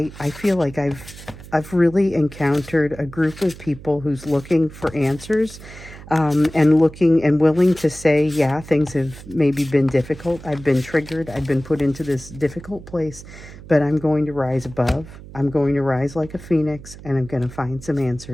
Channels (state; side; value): noise; right; hum, 16 dB below the sound